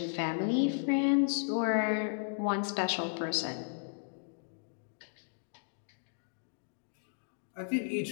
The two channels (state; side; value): silent; right; digital silence